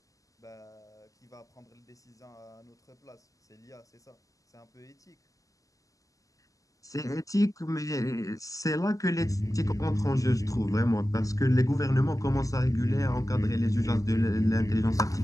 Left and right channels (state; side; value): late; right; 0.16 ms